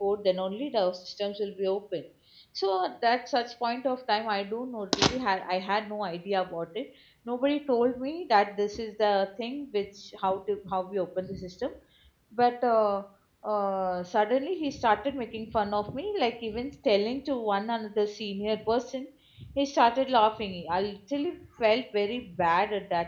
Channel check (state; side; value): identical; both; correlation 1.00